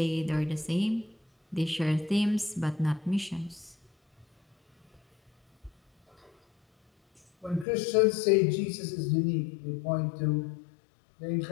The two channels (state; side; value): drops out; right; at 7.7 s